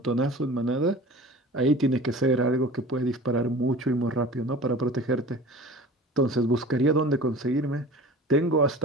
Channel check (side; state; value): both; normal; correlation 0.40